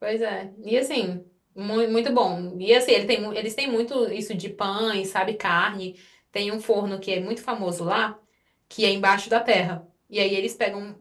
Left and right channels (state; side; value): identical; both; correlation 1.00